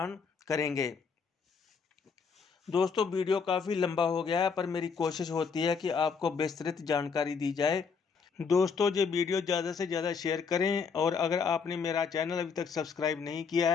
करेंगे। दोस्तों, वीडियो काफ़ी लंबा हो गया है, पर मेरी कोशिश होती है कि आपको विस्तृत जानकारी दी जाए। दोस्तों, ये वीडियो ज़्यादा से ज़्यादा शेयर करें और अगर आपने मेरा चैनल अभी तक सब्सक्राइब नहीं किया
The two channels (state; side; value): quieter; right; 5.7 dB